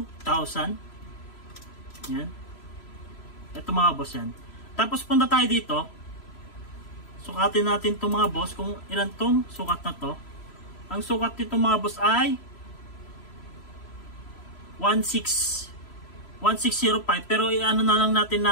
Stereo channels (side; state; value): right; late; 3.0 ms